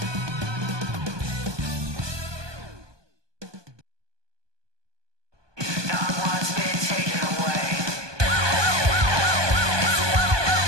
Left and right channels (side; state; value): left; late; 1.2 ms